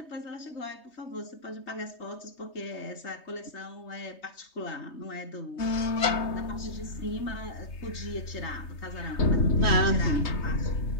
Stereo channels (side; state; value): right; late; 3.2 ms